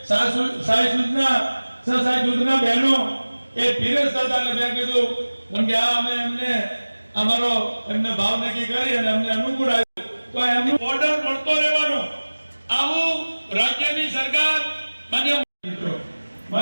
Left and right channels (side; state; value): both; inverted; correlation -1.00